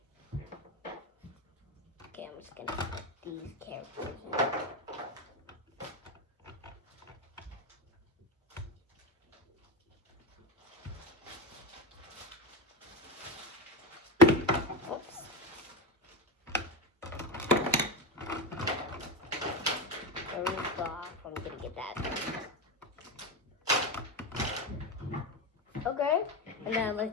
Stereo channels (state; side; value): normal; both; correlation 0.17